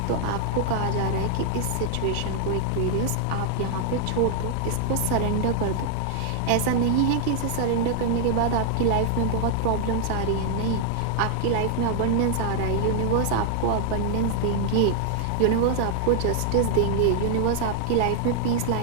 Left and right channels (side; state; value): both; different; correlation 0.00